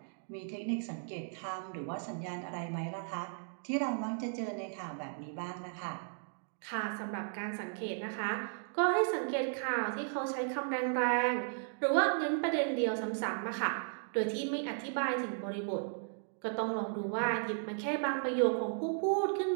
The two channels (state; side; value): silent; left; digital silence